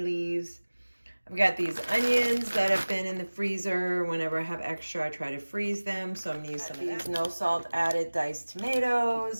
leaves. I've got these onions that have been in the freezer. Whenever I have extra, I try to freeze them. So I'm gonna use some of these no salt added diced tomatoes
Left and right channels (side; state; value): both; inverted; correlation -1.00